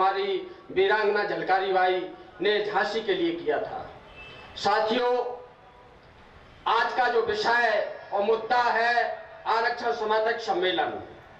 वीरांगना झलकारी बाई ने झांसी के लिए किया था। साथियों, आज का जो विषय और मुद्दा है आरक्षण समर्थक सम्मेलन।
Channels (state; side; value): identical; both; correlation 1.00